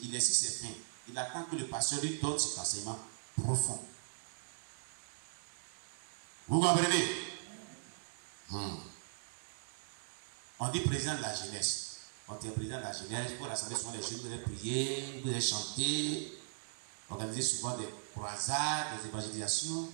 Il est sur ses fins. Il attend que le pasteur lui donne cet enseignement profond. Vous comprenez? On dit président de la jeunesse. Quand tu es président de la jeunesse, pour l'assemblée, souvent les jeunes, vous allez prier, vous allez chanter, organiser souvent des croisades, des évangélisations,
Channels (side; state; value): left; silent; digital silence